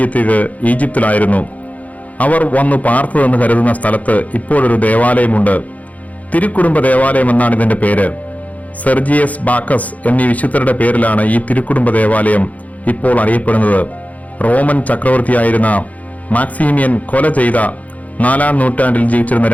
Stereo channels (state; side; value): late; right; 0.072 ms